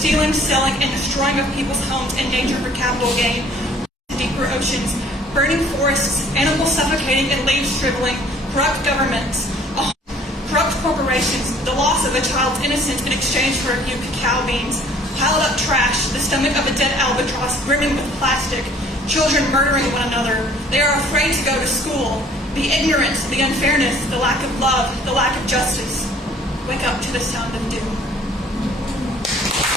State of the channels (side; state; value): both; normal; correlation 0.55